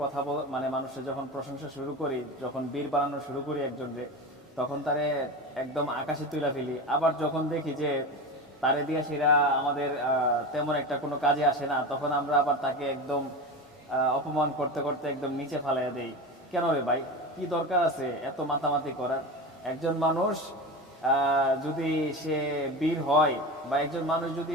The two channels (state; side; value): normal; both; correlation 0.25